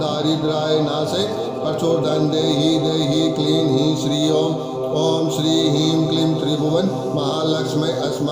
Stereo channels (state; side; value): identical; both; correlation 1.00